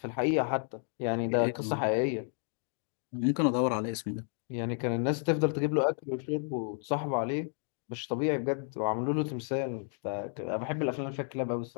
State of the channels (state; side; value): silent; right; 57 dB below the other